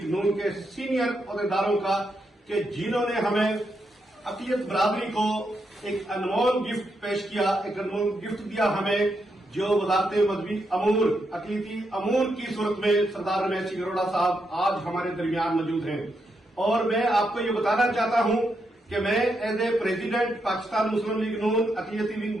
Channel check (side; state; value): both; normal; correlation 0.82